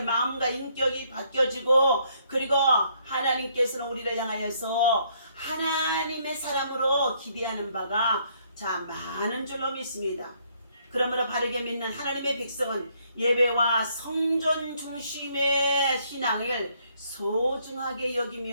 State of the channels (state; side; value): inverted; both; correlation -0.68